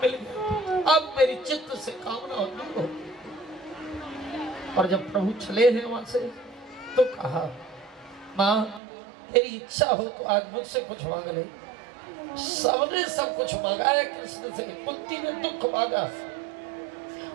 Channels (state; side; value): drops out; left; at 8.8 s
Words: मिल गया। अब मेरी चित्त से कामना दूर हो। और जब प्रभु चले हैं वहां से तो कहा मां तेरी इच्छा हो तो आज मुझसे कुछ मांग ले। सबने सब कुछ मांगा है कृष्ण से। कुंती ने दुख मांगा,